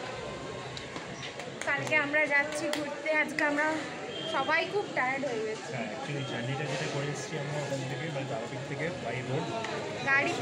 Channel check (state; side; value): identical; both; correlation 1.00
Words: কালকে আমরা যাচ্ছি ঘুরতে, আজকে আমরা সবাই খুব টায়ার্ড হয়ে গেছি। অ্যাকচুয়ালি জার্নিটা যেটা করে এসেছি আমরা ওখান থেকে, মানে তারাপীঠ থেকে বাই রোড